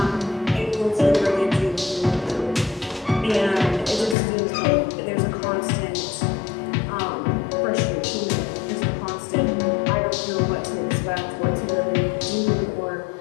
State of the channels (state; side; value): drops out; right; at 4.2 s